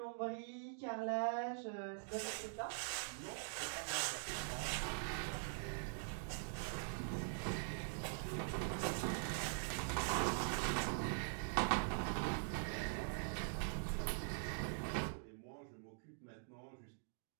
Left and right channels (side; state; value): left; silent; digital silence